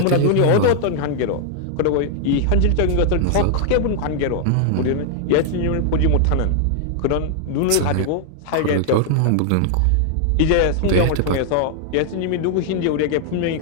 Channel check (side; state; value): both; different; correlation 0.00